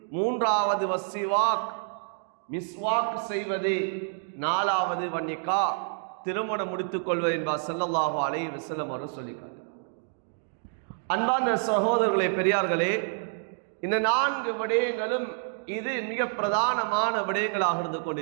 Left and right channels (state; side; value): silent; left; 59 dB below the other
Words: மூன்றாவது வஸ்ஸிவாக், மிஸ்வாக் செய்வது. நாலாவது வன்னிகா, திருமணம் முடித்துக் கொள்வது என்பார் ஸல்லல்லாஹு அலைஹி வஸல்லம் அவர்கள் சொல்லிக்கார். அன்பான சகோதரர்களே, பெரியார்களே, இந்த 4 விடயங்களும் இது மிக பிரதானமான விடயங்களாக இருந்து